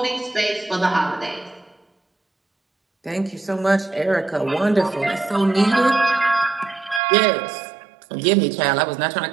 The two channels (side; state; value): left; drops out; at 7.0 s